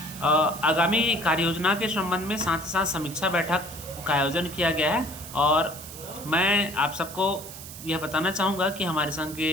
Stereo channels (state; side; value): noise; right; hiss, 13 dB below the sound